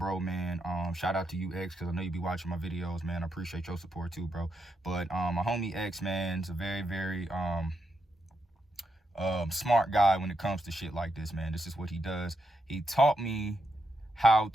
man. Shout out to you, X, because I know you be watching my videos, man. I appreciate your support too, bro. But my homie X, man, is a very, very smart guy when it comes to shit like this, man. This is what he does. He taught me how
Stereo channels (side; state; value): both; normal; correlation 0.82